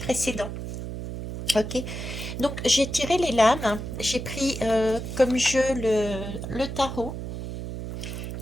Ok, donc j'ai tiré les lames, j'ai pris comme jeu le tarot.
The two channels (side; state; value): right; noise; hum, 7 dB below the sound